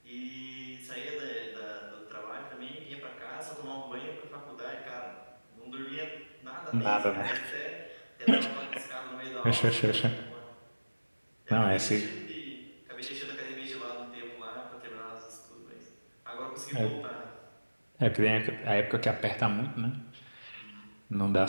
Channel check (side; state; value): both; inverted; correlation -1.00